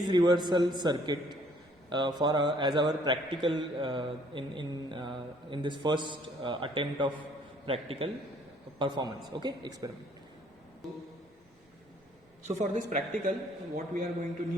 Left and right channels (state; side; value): normal; both; correlation 0.61